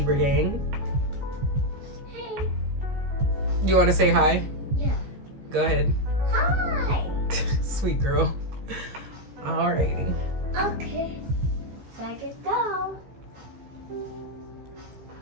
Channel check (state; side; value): late; left; 15 ms